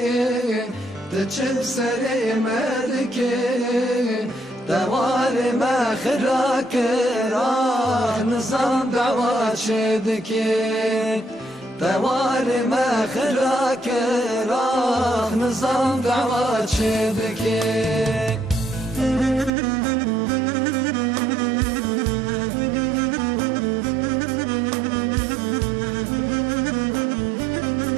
تجب سليمتك دوار ما خراك راه نظام دعوات شدكي دوار ما خراك راه نظام دعوات شدكي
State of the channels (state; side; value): drops out; left; at 19.5 s